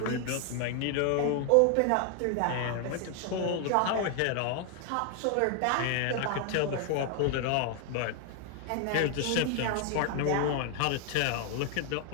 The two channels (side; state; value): both; different; correlation 0.00